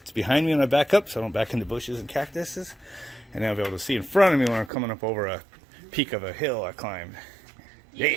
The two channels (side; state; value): left; drops out; at 4.7 s